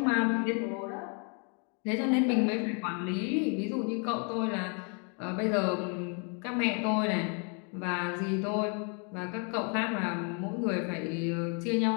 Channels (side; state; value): right; quieter; 37.3 dB